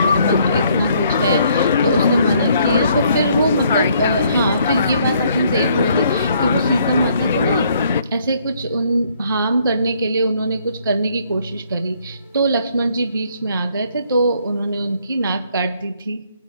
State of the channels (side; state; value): both; inverted; correlation -0.66